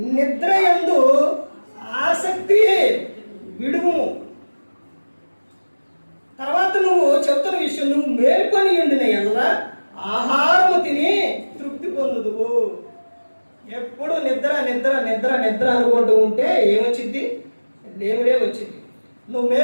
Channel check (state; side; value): inverted; both; correlation -1.00